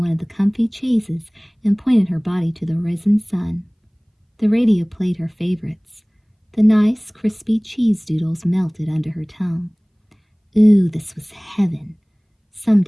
of the comfy chaises and pointed her body to the risen sun. The radio played her favorites. The nice, crispy cheese doodles melted under her tongue. Ooh, this was heaven.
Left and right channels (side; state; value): both; identical; correlation 1.00